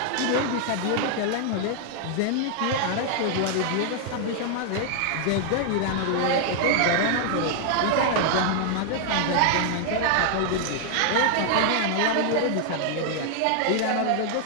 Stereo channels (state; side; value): different; both; correlation 0.00